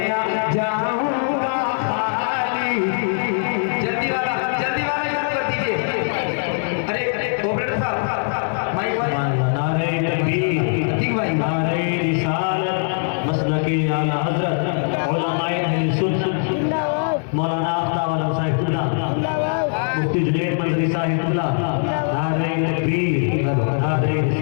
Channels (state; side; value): silent; right; digital silence